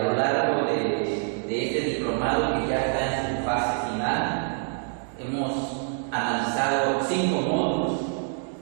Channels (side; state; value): left; silent; digital silence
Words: lo largo de este diplomado, que ya está en su fase final, hemos analizado 5 módulos.